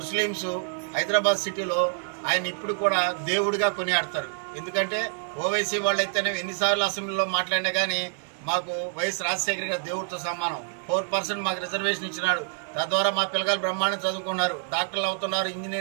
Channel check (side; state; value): left; silent; digital silence